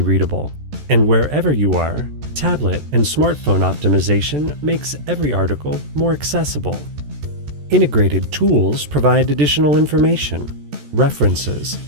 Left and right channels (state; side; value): late; left; 14 ms